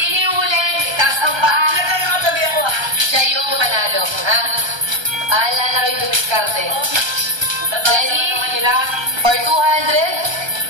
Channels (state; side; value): late; left; 1.3 ms